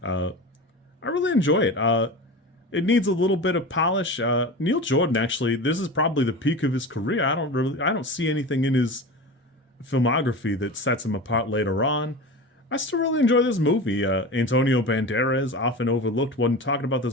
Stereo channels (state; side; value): normal; both; correlation 0.29